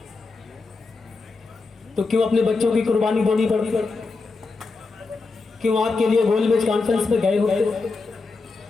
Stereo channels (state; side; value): quieter; right; 4.0 dB